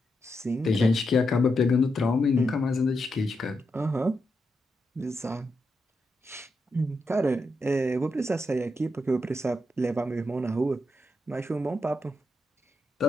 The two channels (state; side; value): normal; both; correlation 0.84